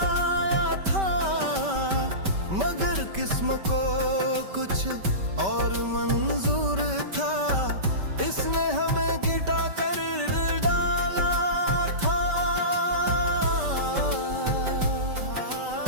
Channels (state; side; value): late; left; 5.2 ms